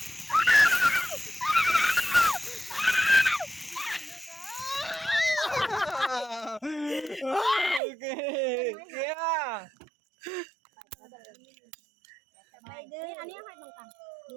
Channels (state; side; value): drops out; left; at 7.8 s